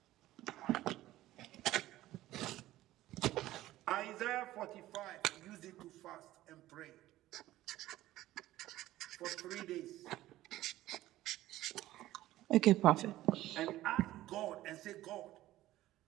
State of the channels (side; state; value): left; quieter; 15.4 dB